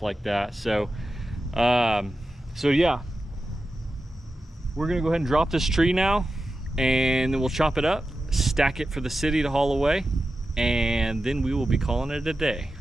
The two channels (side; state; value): both; normal; correlation 0.92